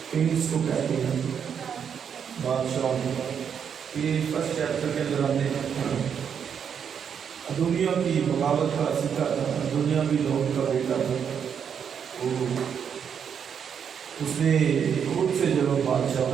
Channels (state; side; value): quieter; left; 7.6 dB